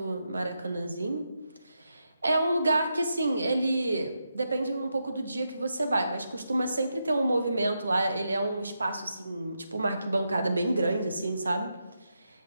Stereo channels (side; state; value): both; inverted; correlation -0.85